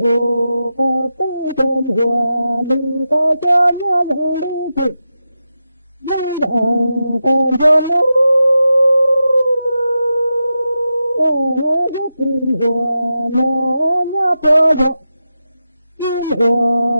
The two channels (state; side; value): inverted; both; correlation -0.89